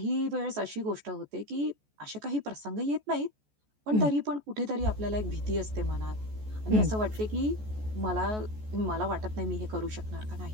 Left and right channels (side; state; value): left; late; 14 ms